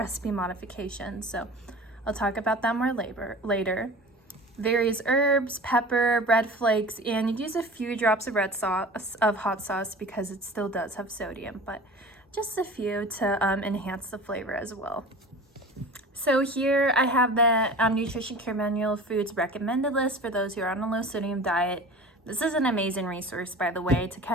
modification, so I'll talk about that more later. Various herbs, pepper, bread flakes, and you'd use a few drops of hot sauce because it still does have sodium, but just a few to enhance the flavor as well. So here I have the Nutrition Care Manual Foods Recommended List for those who are on a low sodium diet. This is an amazing resource, by the way, to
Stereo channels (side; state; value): both; normal; correlation 0.38